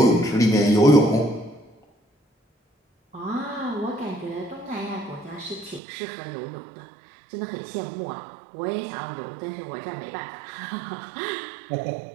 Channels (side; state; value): left; drops out; at 5.8 s